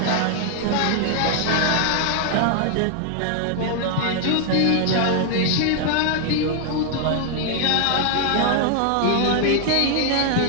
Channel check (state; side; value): different; both; correlation 0.00